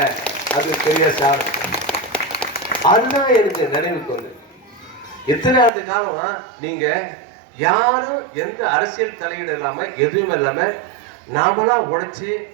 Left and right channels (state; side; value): drops out; left; at 5.7 s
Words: அது பெரிய சார். அதுதான் எனக்கு நினைவுக்கு வந்து எத்தனை ஆண்டு காலம் நீங்க யாரும் எந்த அரசியல் தலையீடு இல்லாம எதுவும் இல்லாம நாமளா உழைச்சி